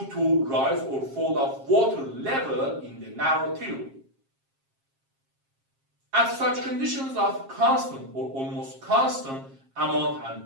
to rise or fall of water level in the narrow tube. At such conditions of constant or almost constant amount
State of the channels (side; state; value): left; late; 7.4 ms